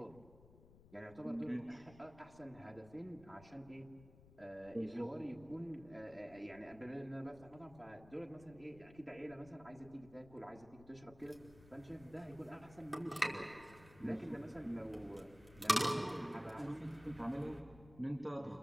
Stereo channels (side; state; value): left; noise; rumble, 20 dB below the sound